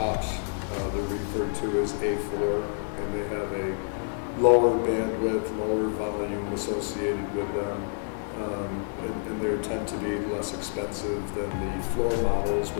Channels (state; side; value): silent; right; 59 dB below the other